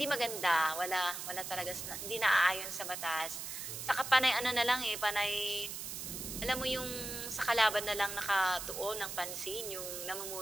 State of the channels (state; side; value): noise; right; hiss, 6 dB below the sound